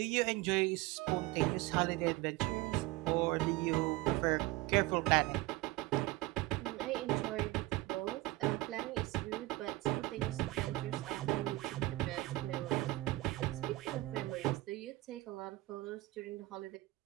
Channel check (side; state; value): left; quieter; 19.6 dB